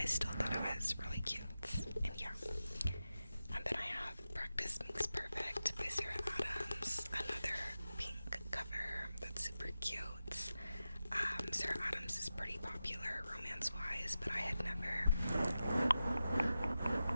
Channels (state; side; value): inverted; both; correlation -0.92